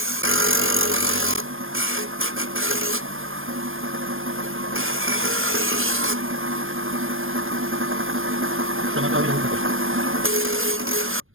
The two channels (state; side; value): late; left; 0.59 ms